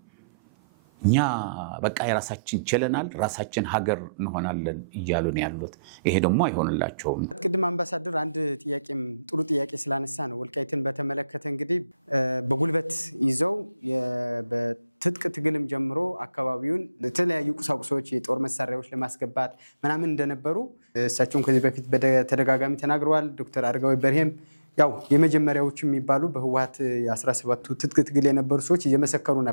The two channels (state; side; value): inverted; both; correlation -0.83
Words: እኛ በቃ የራሳችን ችለናል፣ ራሳችን ሀገር እንሆናለን እያሉ ነው ያሉት። ይሄ ደግሞ አይሆንላቸውም። ቅድም አምባሳደር አንድ ጥያቄም ጥሩ ጥያቄ ስላነሳ ነው ወልቃይትን በተመለከተ እንግዲህ በጉልበት ይዘው በትጥቅ ትግልም ጀምሮ አካባቢውን ለተለያዩ ቁሳቁሶች የጦር መሳሪያዎች ለማስገባት ምናምን እንደነበሩ እሳቸውም ከዚህ በፊት በተደጋጋሚ ተናግረዋል። ዶክተር አረጋዊ በርሄም ያው የመጀመሪያዎቹ የሚባሉ በህወሓት የ17ቱ ትጥቅ ትግል የነበሩ ሰዎች እየመሰከሩ